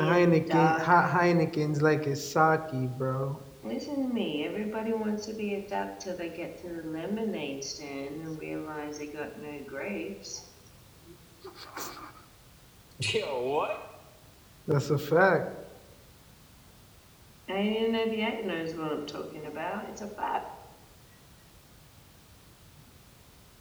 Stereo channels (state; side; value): identical; both; correlation 1.00